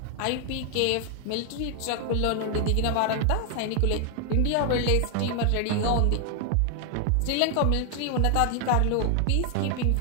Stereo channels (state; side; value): different; both; correlation 0.00